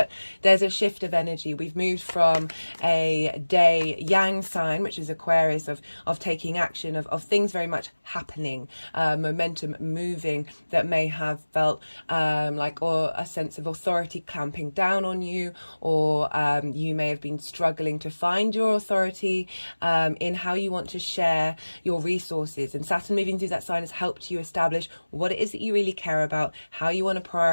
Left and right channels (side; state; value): both; inverted; correlation -1.00